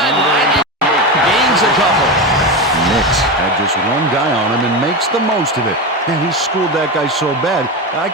and gains a couple. Nix had just one guy on him and makes the most of it. And he schooled that guy so bad, I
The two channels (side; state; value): both; normal; correlation 0.18